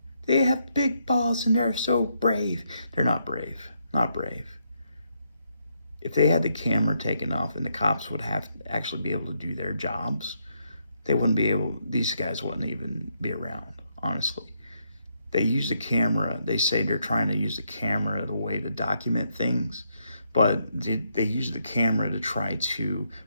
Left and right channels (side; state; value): both; inverted; correlation -0.77